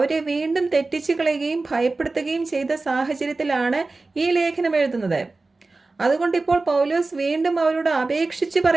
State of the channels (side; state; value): left; quieter; 3.5 dB